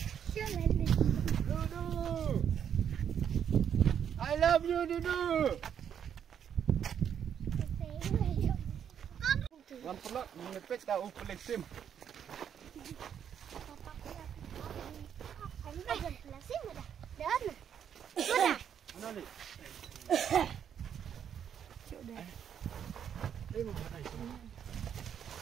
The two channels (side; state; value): left; quieter; 8.6 dB